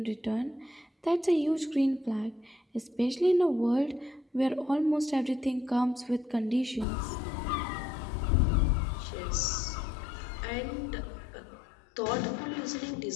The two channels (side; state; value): right; drops out; at 6.9 s